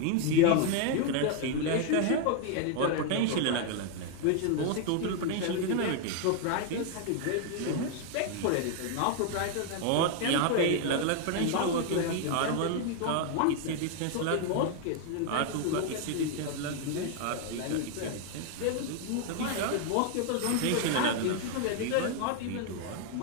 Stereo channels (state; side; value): different; both; correlation 0.00